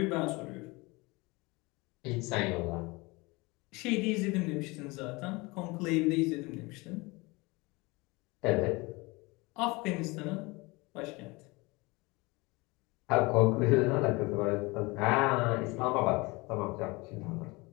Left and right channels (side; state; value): right; quieter; 24.7 dB